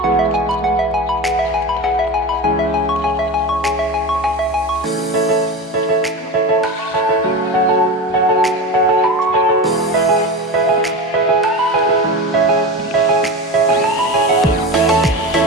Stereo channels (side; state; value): both; normal; correlation 0.26